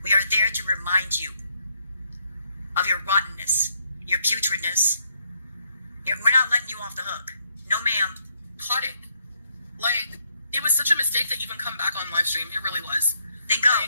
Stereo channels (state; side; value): inverted; both; correlation -0.74